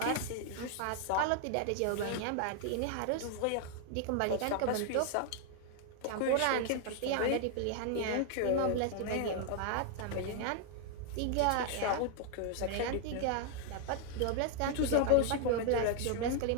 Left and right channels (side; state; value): both; different; correlation 0.00